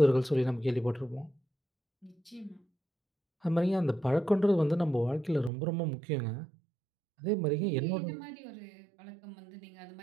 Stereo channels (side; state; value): left; drops out; at 5.5 s